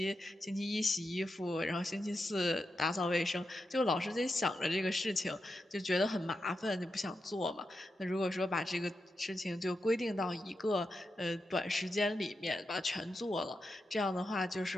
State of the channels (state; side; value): normal; both; correlation 0.88